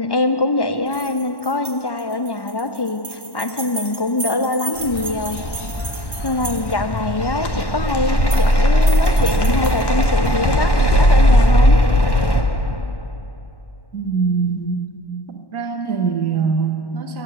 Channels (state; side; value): late; right; 1.1 ms